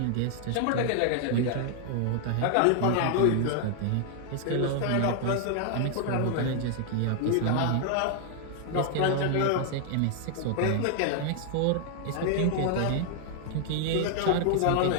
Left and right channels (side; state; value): both; different; correlation 0.00